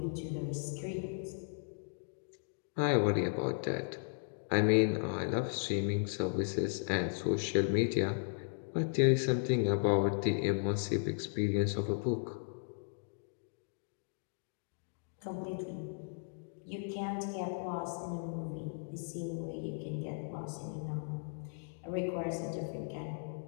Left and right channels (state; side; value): silent; right; digital silence